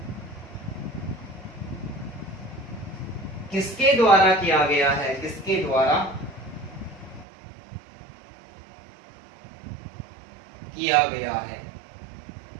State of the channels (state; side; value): drops out; left; at 7.2 s